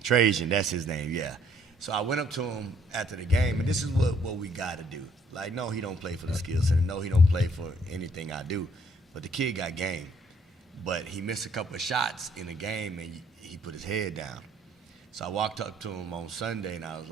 Trajan, that's his name. Yeah. So I went up to him after the game, and this is what we got to do. Like, no, he don't play for the skill center. No, he don't play for anything I do. But the kid got game. But he missed a couple of shots in the game, and he put his head down. So I walked up to him on Sunday, and I was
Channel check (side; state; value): both; normal; correlation 0.65